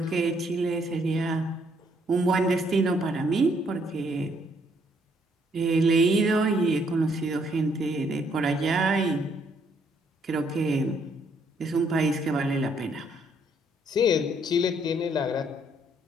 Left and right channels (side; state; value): both; normal; correlation 0.69